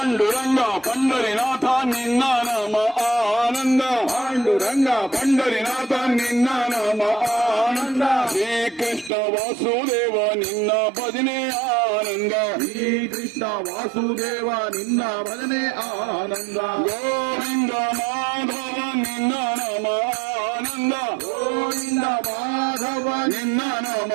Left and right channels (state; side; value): drops out; left; at 9.1 s